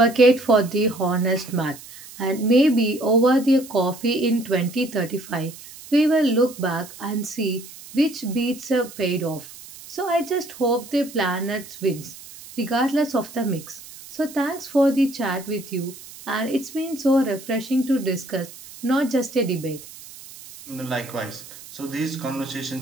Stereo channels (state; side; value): noise; right; hiss, 17 dB below the sound